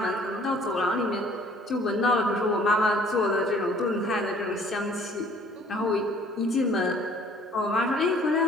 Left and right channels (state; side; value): normal; both; correlation 0.56